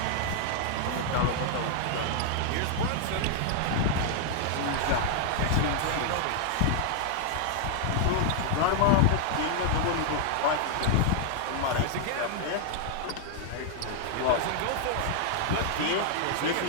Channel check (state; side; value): different; both; correlation -0.01